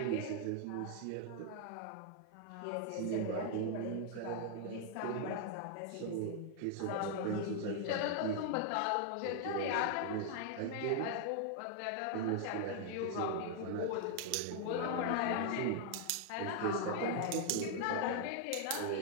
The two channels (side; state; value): both; different; correlation 0.00